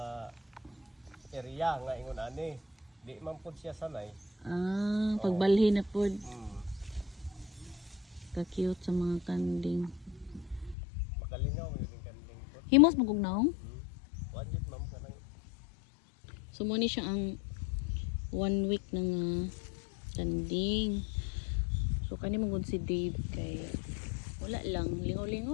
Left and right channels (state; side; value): drops out; right; at 10.8 s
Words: area nga ingon ani, di man pud siya sanay. Pagbalhin na pud. Ka-cute sa mga kanding. Makalingaw yun yung kanding pud. Himos magugnaong? Wanjit ma'am kanang. So mo ni siya ang 1 week ng kanding. So kani mong si Dave kay wala lang